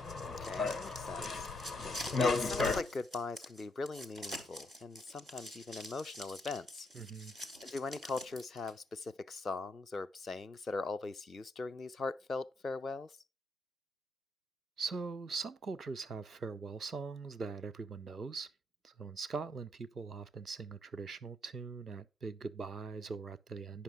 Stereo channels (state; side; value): normal; both; correlation 0.75